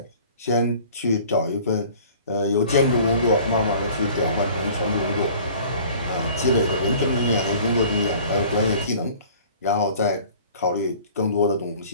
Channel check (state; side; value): inverted; both; correlation -0.48